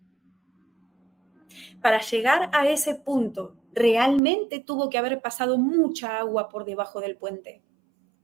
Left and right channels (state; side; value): drops out; left; at 4.2 s